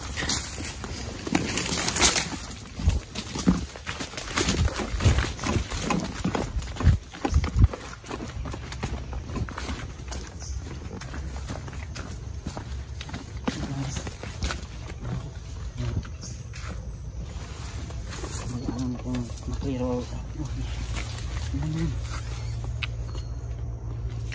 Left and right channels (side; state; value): both; identical; correlation 1.00